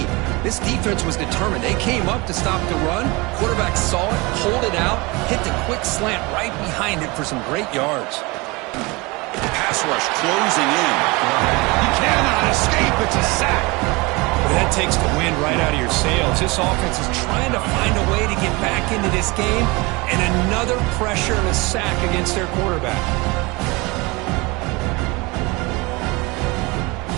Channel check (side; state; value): left; quieter; 25.1 dB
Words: This defense was determined. They came up to stop the run. Quarterback saw it, pulled it out, hit the quick slant right behind it for some great yards. Pass rush closing in. He cannot escape. It's a sack. Well, that takes the wind right out of your sails. This offense is trying to find a way to get back into this game, and another pressure and a sack against their quarterback.